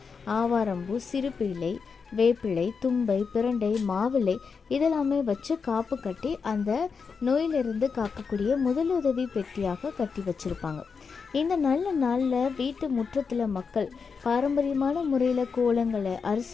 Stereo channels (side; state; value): right; quieter; 5.5 dB